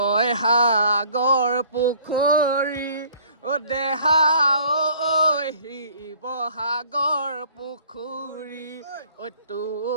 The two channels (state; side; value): inverted; both; correlation -0.55